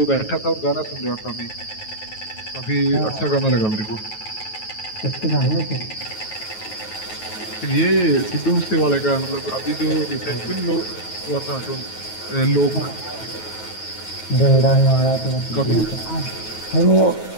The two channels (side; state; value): right; late; 9.3 ms